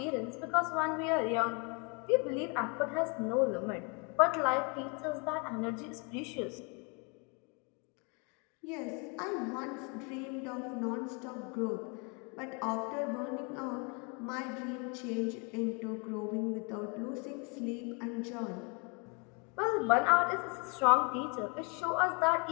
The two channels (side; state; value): right; quieter; 33.3 dB